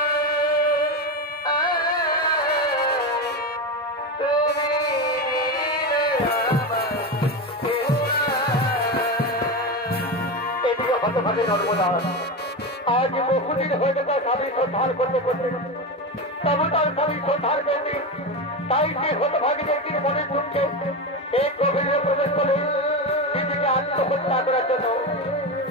এদিকে হতভাগে নর্মদা আজ বহুদিন হয়ে গেছে স্বামী শ্রদ্ধার করতে করতে, তবু তার স্বামী শ্রদ্ধার করতে, তাই সে হতভাগীর একদিন মনে দুঃখে এই গভীরে প্রবেশ করে নিজেকে আত্মহত্যা করার জন্য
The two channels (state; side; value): normal; both; correlation 0.17